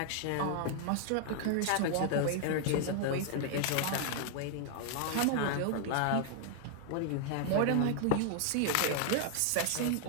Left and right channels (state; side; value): different; both; correlation 0.00